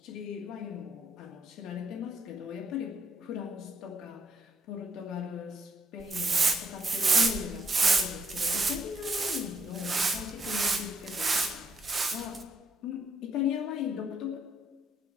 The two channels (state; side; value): normal; both; correlation 0.73